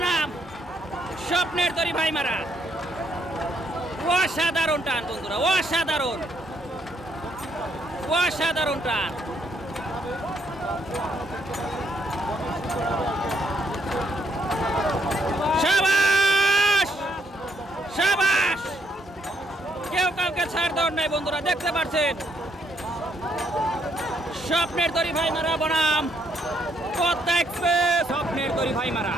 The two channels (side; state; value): both; normal; correlation 0.72